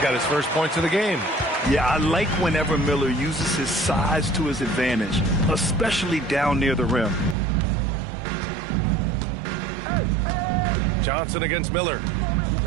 his first points of the game. Yeah, I like whenever Miller uses his size to his advantage, especially down near the rim. Johnson against Miller.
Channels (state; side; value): drops out; left; at 7.4 s